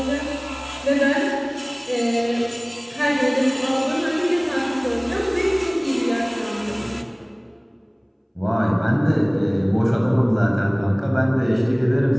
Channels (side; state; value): both; identical; correlation 1.00